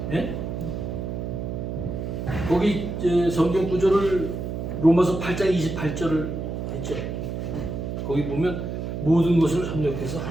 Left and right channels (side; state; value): right; noise; hum, 4 dB below the sound